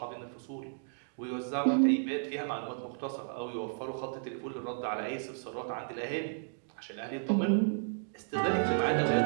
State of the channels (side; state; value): left; silent; digital silence